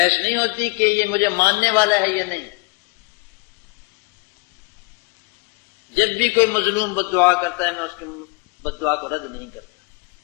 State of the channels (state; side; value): quieter; right; 28.8 dB